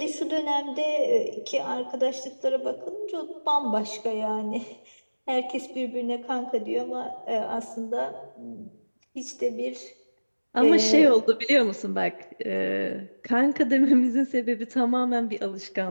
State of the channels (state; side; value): inverted; both; correlation -1.00